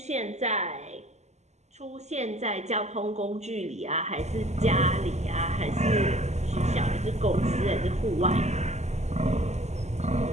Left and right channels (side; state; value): left; late; 0.33 ms